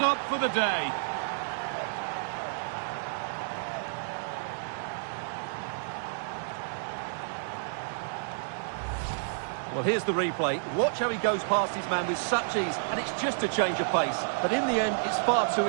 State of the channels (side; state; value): left; silent; digital silence